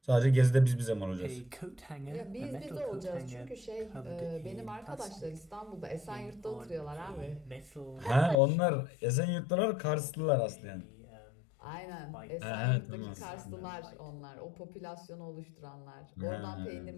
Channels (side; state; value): right; drops out; at 8.3 s